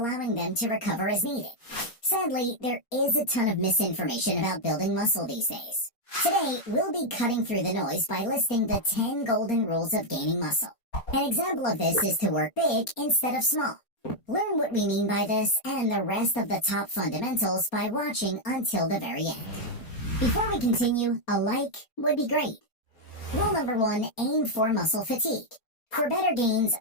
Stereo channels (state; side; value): late; right; 4.3 ms